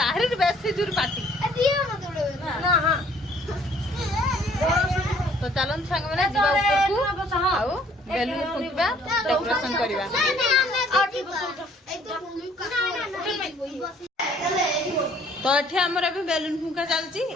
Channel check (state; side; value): normal; both; correlation 0.60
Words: ବେଶୀ ଜୋର ପାଟି ना हां तो चलन सांग मैंने जीवा ऊपर को आउ बेलून फुकिबा डेकोरेशन करबा। तो एठी हमर अभी बेलून फुका चलची